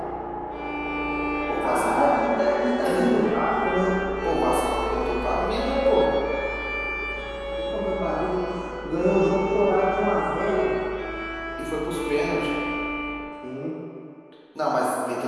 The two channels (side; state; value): both; identical; correlation 1.00